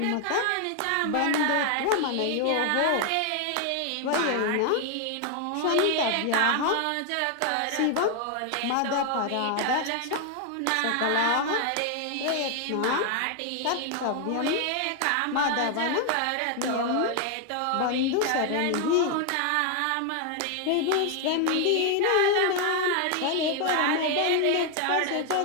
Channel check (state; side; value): different; both; correlation 0.00